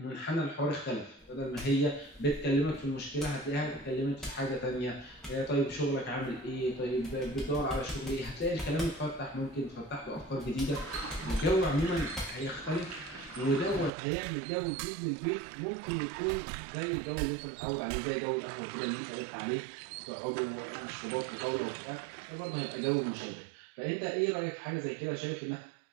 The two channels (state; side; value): drops out; left; at 13.9 s